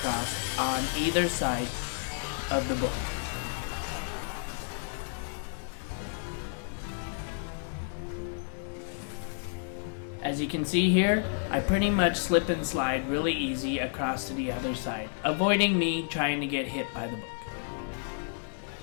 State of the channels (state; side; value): silent; right; digital silence